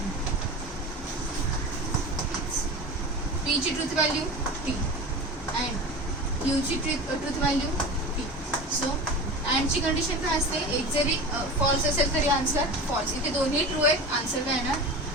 पीची ट्रूथ व्हॅल्यू टी अँड क्यूची ट्रूथ व्हॅल्यू टी. सो अँडची कंडिशन काय असते, एक जरी फॉल्स असेल तरी आन्सर फॉल्स. इथे दोन्ही ट्रू आहेत, आन्सर काय येणार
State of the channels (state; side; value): normal; both; correlation 0.31